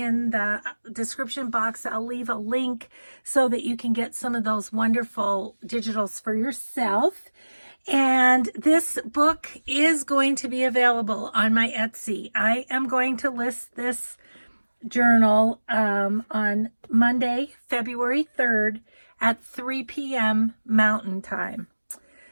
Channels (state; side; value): inverted; both; correlation -1.00